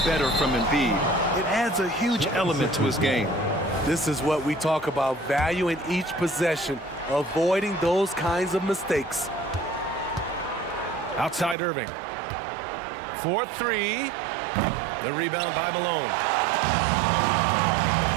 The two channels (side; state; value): left; drops out; at 11.6 s